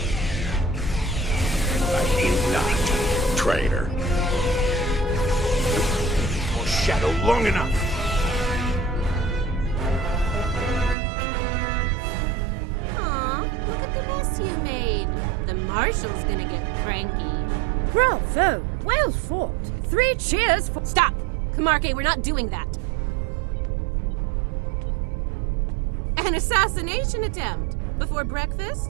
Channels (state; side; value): drops out; left; at 11.0 s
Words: I ain't not, traitor. Your shadow long enough. Look at the mess you made. The Marshal's gonna get cranky. Bravo! Well fought! 3 cheers for— Stop! Camargue, we're not doing that. An assassination attempt? Before